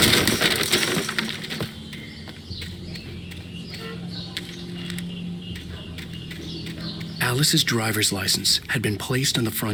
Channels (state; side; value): identical; both; correlation 1.00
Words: Alice's driver's license had been placed on the